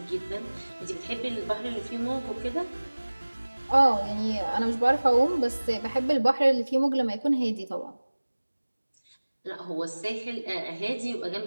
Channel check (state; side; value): inverted; both; correlation -1.00